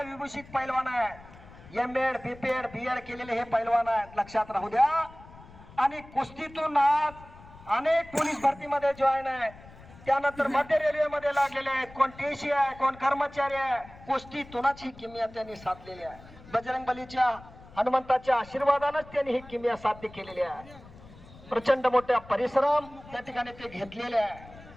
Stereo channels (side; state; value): left; noise; rumble, 20 dB below the sound